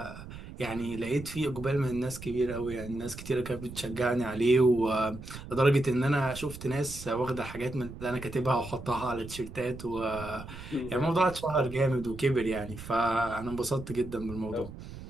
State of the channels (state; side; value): noise; right; rumble, 13 dB below the sound